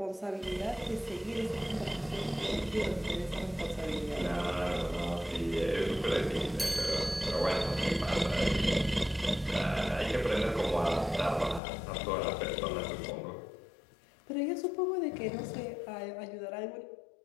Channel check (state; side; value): drops out; right; at 11.6 s